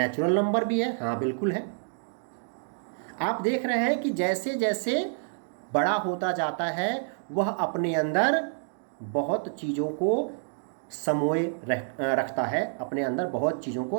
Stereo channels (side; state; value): left; silent; digital silence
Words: नंबर भी है। हाँ बिल्कुल है। आप देख रहे हैं कि जैसे जैसे बड़ा होता जाता है वह अपने अंदर बहुत चीज़ों को समोए रखता है, अपने अंदर बहुत चीज़ों को